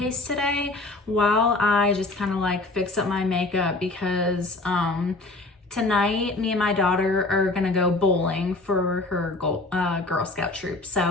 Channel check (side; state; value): right; quieter; 3.0 dB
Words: today while I just kind of like fix up my makeup because tonight me and my daughter are gonna go bowling for her Girl Scout troop.